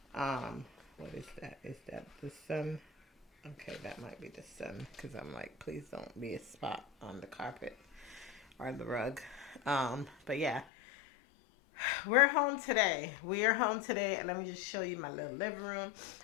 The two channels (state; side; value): drops out; right; at 10.7 s